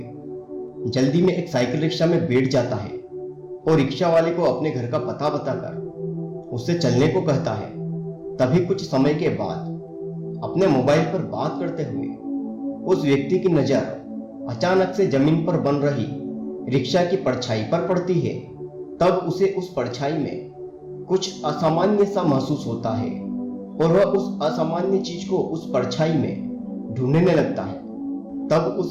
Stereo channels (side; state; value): both; identical; correlation 1.00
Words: जल्दी में एक साइकिल रिक्शा में बैठ जाता है और रिक्शा वाले को अपने घर का पता बताकर उससे चलने को कहता है। तभी कुछ समय के बाद अपने मोबाइल पर बात करते हुए उस व्यक्ति की नज़र अचानक से जमीन पर बन रही रिक्शा की परछाई पर पड़ती है। तब उसे उस परछाई में कुछ असामान्य सा महसूस होता है और वह उस असामान्य चीज को उस परछाई में ढूंढने लगता है। तब